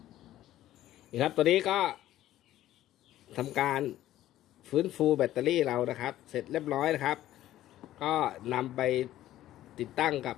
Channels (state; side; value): quieter; right; 13.7 dB